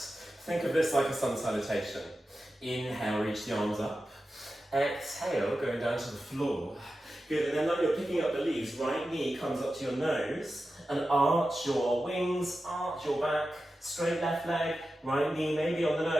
of this like a sun salutation. Inhale, reach the arms up. Exhale, going down to the floor. Good, and then like you're picking up the leaves, right knee comes up to your nose, and arch your wings, arch your back, straight left leg, right knee maybe on the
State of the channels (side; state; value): both; normal; correlation 0.92